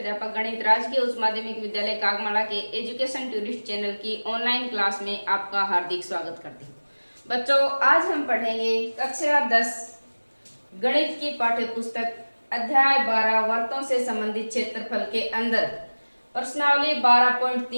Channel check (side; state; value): both; inverted; correlation -1.00